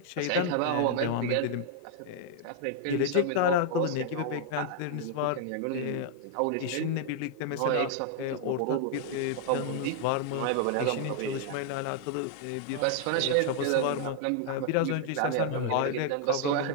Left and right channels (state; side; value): different; both; correlation -0.01